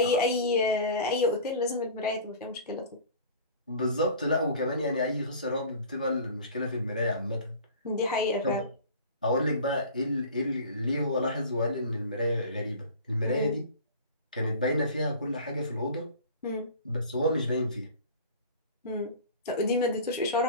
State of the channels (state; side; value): inverted; both; correlation -0.40